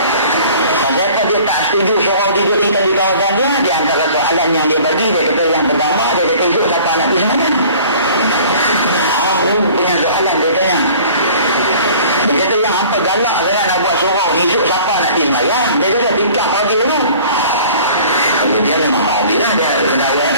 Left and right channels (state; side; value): inverted; both; correlation -0.48